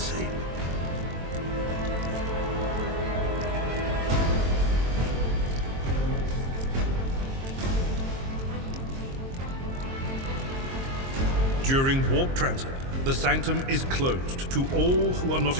During warp transit, the sanctum is closed to all who are not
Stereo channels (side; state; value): left; late; 22 ms